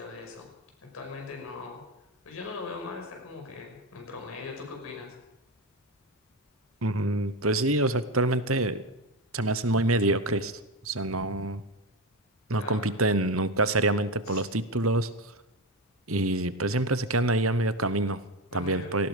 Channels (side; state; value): both; normal; correlation 0.16